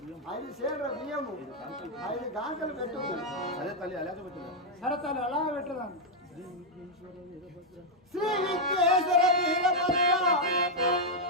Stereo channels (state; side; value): normal; both; correlation -0.02